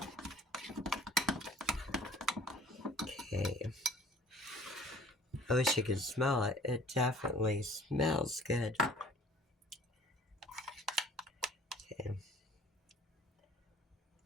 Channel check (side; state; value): both; normal; correlation 0.51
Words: Okay. I wish you could smell it. It definitely smells good. Okay.